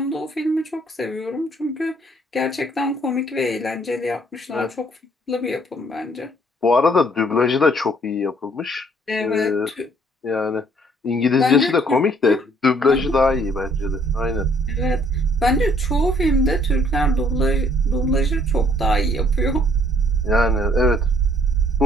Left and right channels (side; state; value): both; normal; correlation 0.63